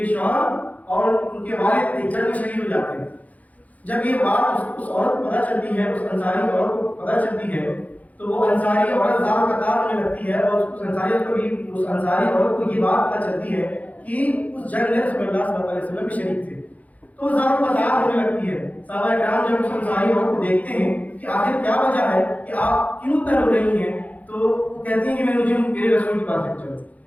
شوہر اور ان کے والد ایک جنگ میں شہید ہو جاتے ہیں. جب یہ بات اس عورت کو پتہ چلتی ہے، اس انصاری عورت کو پتہ چلتی ہے، تو وہ انصاری عورت زار قطار ہونے لگتی ہے اور اس انصاری عورت کو یہ بات پتہ چلتی ہے کہ اس جنگ میں رسول اللہ صلی اللہ علیہ وسلم بھی شریک تھے، تو زار قطار ہونے لگتی ہے. صحابہ کرام جب اس انصاری عورت کو دیکھتے ہیں کہ آخر کیا وجہ ہے کہ آپ کیوں اتنا رو رہی ہیں، تو وہ کہتی ہیں کہ مجھے میرے رسول کے پاس لے چلو،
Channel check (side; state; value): right; late; 0.074 ms